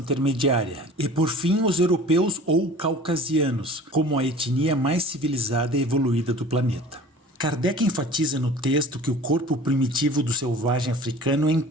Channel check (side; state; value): both; normal; correlation 0.43